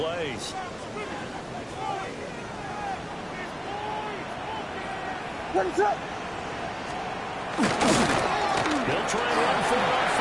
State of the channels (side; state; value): both; identical; correlation 1.00